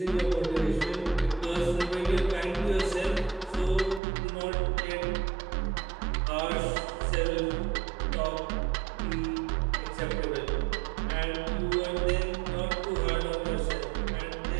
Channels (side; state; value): left; drops out; at 4.0 s